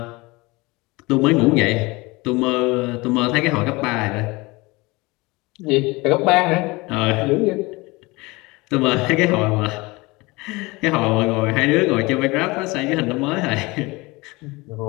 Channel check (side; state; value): right; quieter; 23.5 dB